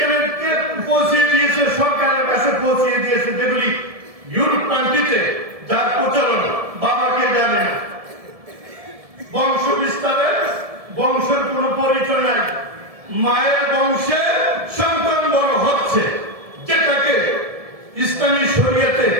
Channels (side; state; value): left; late; 1.7 ms